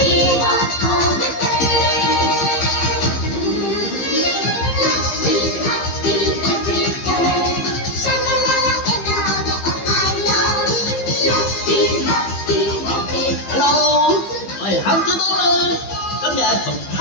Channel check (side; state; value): right; late; 15 ms